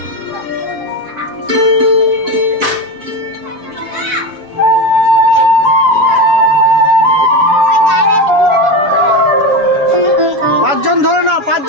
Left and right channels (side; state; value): left; late; 6.9 ms